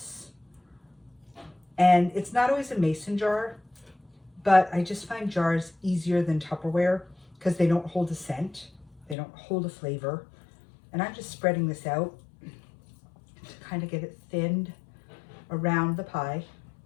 And it's not always a mason jar, but I just find jars easier than Tupperware because they don't hold a scent. They don't hold a flavor. And I'm just spreading this out to kind of get it thinned around the pie.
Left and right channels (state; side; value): drops out; right; at 9.2 s